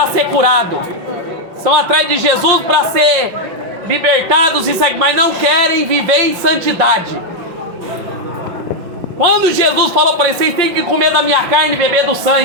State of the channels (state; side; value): late; left; 5.6 ms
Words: ser curado. Estão atrás de Jesus para ser libertados, mas não querem viver em santidade. Quando Jesus falou para eles: vocês têm que comer da minha carne e beber do